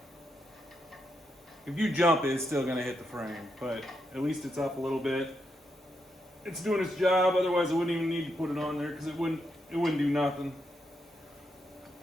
you jump, it's still gonna hit the frame, but at least it's up a little bit. It's doing its job, otherwise I wouldn't even need to put it on there because it wouldn't do nothing.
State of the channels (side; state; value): both; normal; correlation 0.82